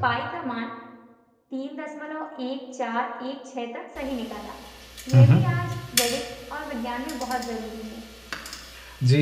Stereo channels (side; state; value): both; identical; correlation 1.00